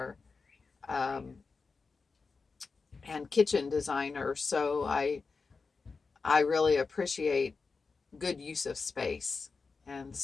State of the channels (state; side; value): quieter; right; 4.6 dB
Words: um, and kitchen designer, so I really appreciate good use of space, and